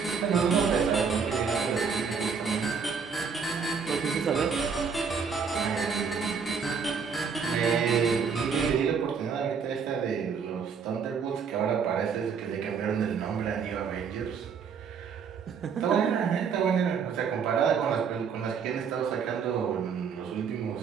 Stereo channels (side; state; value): left; quieter; 6.2 dB